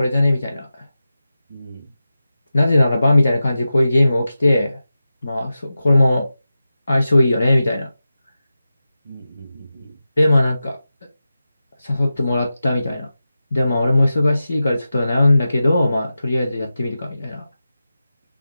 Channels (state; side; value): inverted; both; correlation -0.92